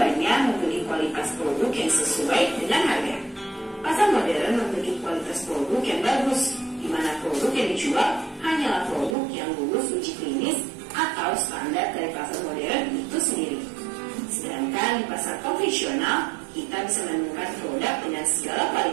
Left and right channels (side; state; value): left; drops out; at 9.2 s